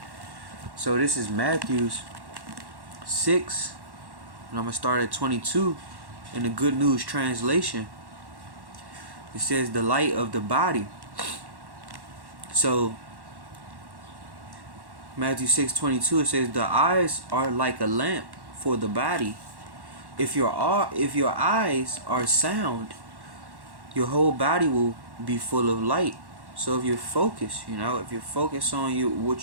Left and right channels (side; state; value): left; late; 1.1 ms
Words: So this is Matthew 6, and I'm gonna start at 22 in the Good News translation. It says, "The light of the body." So Matthew 6:22, it says, "The eyes are like a lamp for the body. If your eyes are sound, your whole body will be full of light." So if you're focused, if you're focused on